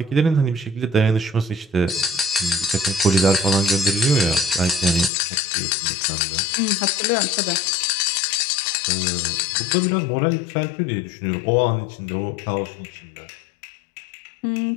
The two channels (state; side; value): drops out; right; at 5.1 s